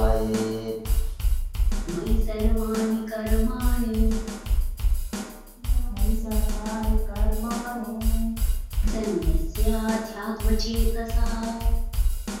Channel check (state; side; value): identical; both; correlation 1.00